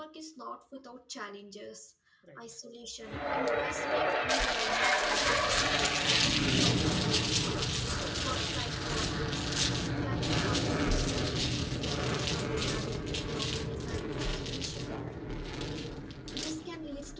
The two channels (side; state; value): both; identical; correlation 1.00